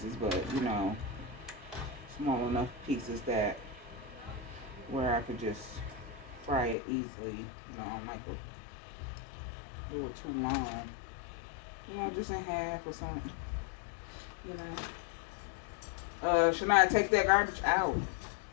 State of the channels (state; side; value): drops out; right; at 6.8 s